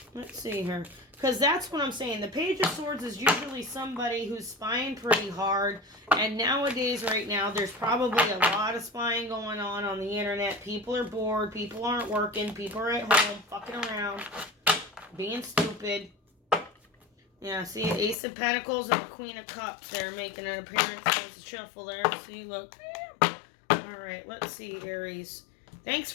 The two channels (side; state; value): right; drops out; at 18.2 s